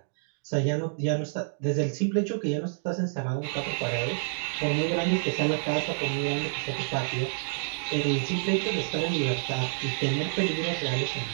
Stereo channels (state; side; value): silent; left; digital silence